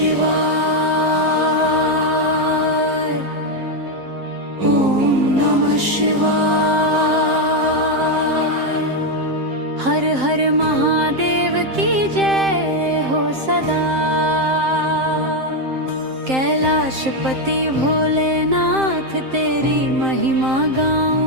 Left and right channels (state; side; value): late; left; 7.6 ms